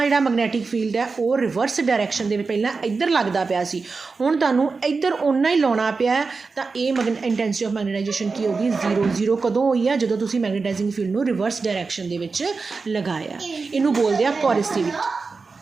ਜਿਹੜਾ ਮੈਗਨੈਟਿਕ ਫੀਲਡ ਹੈ ਉਹ ਰਿਵਰਸ ਡਾਇਰੈਕਸ਼ਨ ਦੇ ਵਿੱਚ ਪਹਿਲਾਂ ਇੱਧਰ ਲੱਗਦਾ ਪਿਆ ਸੀ, ਹੁਣ ਤੁਹਾਨੂੰ ਇੱਧਰ ਓਨਾ ਹੀ ਲਾਉਣਾ ਪਿਆ, ਤਾਂ ਇਹ ਇੰਟੈਂਸਿਟੀ ਆਫ ਮੈਗਨੇਟਾਈਜੇਸ਼ਨ ਕੀ ਹੋਗੀ? 0। 0 ਕਦੋਂ ਹੋਈ ਆ? ਜਦੋਂ ਤੁਸੀਂ ਮੈਗਨੇਟਾਈਜ਼ਿੰਗ ਫੀਲਡ ਨੂੰ ਰਿਵਰਸ ਡਾਇਰੈਕਸ਼ਨ ਦੇ ਵਿੱਚ ਲਗਾਇਆ। ਇਹਨੂੰ ਬੋਲਦੇ ਆ ਕੋਰਸਿਵਿਟੀ।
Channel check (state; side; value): quieter; left; 4.4 dB